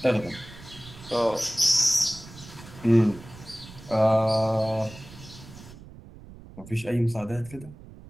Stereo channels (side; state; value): right; noise; rumble, 18 dB below the sound